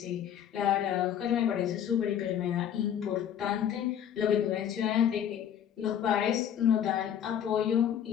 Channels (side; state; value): right; quieter; 9.5 dB